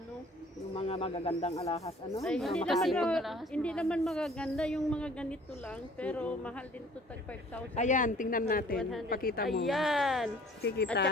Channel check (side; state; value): both; normal; correlation 0.53